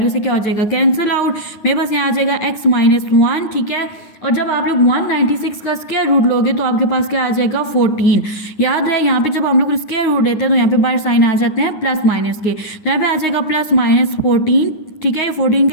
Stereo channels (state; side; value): late; right; 9.6 ms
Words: से क्या हो जाएगा, कैंसिल आउट। मेरे पास यहाँ आ जाएगा x-1, ठीक है। और जब आप लोग 196 का स्क्वायर रूट लोगे तो आपके पास क्या आ जाएगा, 14। याद रहे यहाँ पे जब हम लोग स्क्वायर रूट लेते हैं तो यहाँ पे बाहर साइन आ जाते हैं प्लस माइनस के, तो यहाँ पे आ जाएगा +-14, ठीक है। 14